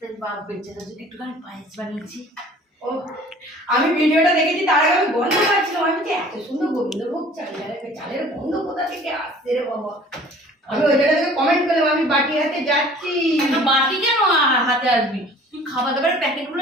বাপ বেচারা যদি একটুখানি পায়েস বানিয়েছি ও আমি ভিডিওটা দেখেছি তার আগে আমি গন্ধ পাচ্ছিলাম আমি যে এত সুন্দর গোবিন্দভোগ চালের গন্ধ কোথা থেকে আসছে রে বাবা আমি ওই জায়গা থেকে কমেন্ট করলাম আমি বাটি হাতে যাচ্ছি বাটি কেন হাতে আসবি তুই খাবার দাবারের প্যাকেটগুলো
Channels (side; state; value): both; normal; correlation 0.50